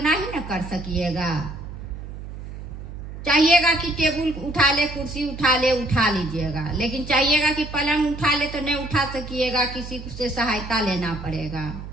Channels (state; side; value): noise; right; hum, 11 dB below the sound